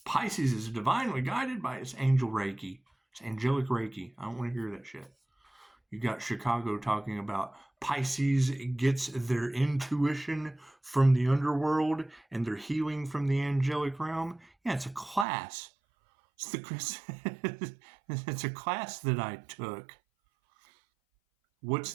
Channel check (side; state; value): left; drops out; at 15.2 s